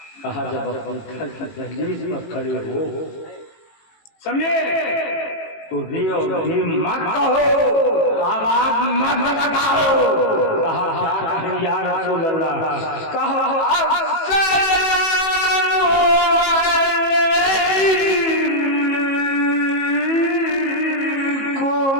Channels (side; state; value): right; late; 18 ms